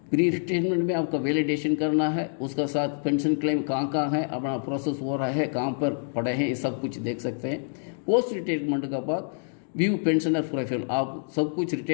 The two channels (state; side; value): silent; right; digital silence